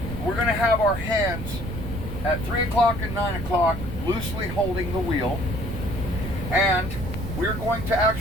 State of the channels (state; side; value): noise; right; rumble, 7 dB below the sound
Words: We're going to have our hands at 3 o'clock and 9 o'clock loosely holding the wheel, and we're going to